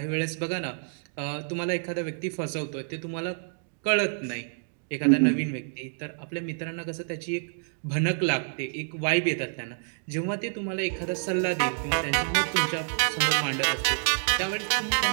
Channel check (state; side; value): silent; left; digital silence